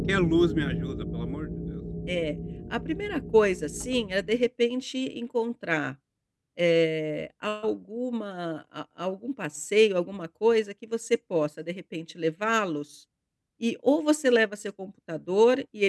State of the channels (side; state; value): both; identical; correlation 1.00